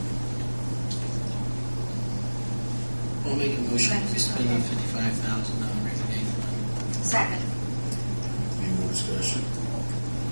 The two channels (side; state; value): both; inverted; correlation -1.00